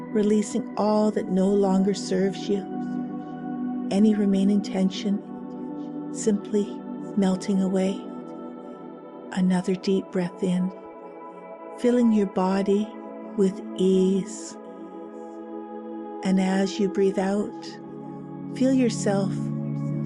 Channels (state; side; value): identical; both; correlation 1.00